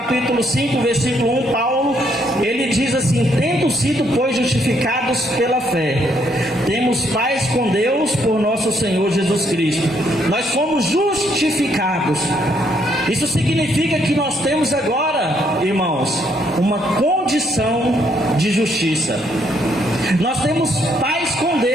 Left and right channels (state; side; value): normal; both; correlation 0.71